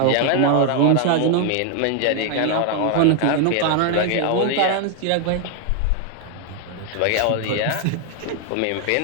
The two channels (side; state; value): both; different; correlation 0.00